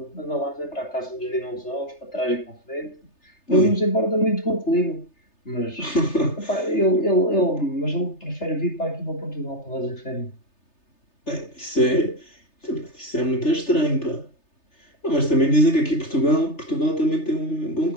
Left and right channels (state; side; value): late; right; 3.3 ms